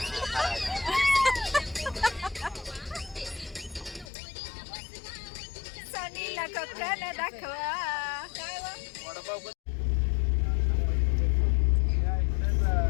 सनीला कोकण दाखवा.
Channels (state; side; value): drops out; right; at 4.1 s